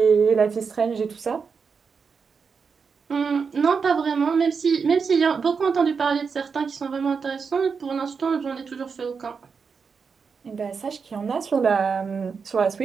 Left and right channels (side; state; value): left; quieter; 5.6 dB